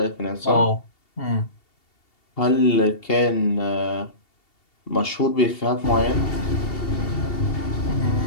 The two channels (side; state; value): right; late; 2.7 ms